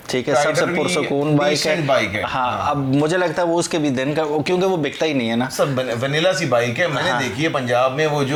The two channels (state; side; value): identical; both; correlation 1.00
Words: ठीक है, सबसे पुरसकून बाइक है। हाँ, अब मुझे लगता है वो उसके भी दिन का, क्योंकि वो बिकता ही नहीं है ना, सब वनीला सी बाइक है। मैंने देखी है पंजाब में, वो